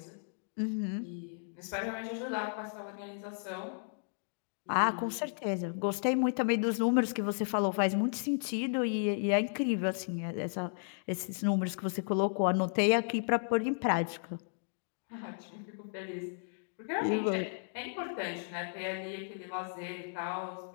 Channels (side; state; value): right; silent; digital silence